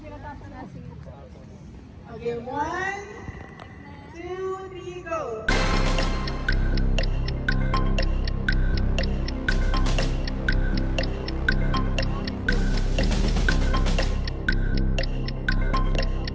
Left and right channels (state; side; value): identical; both; correlation 1.00